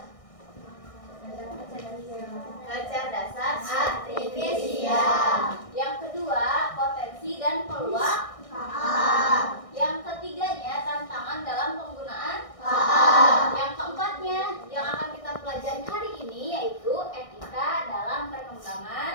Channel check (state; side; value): late; right; 1.6 ms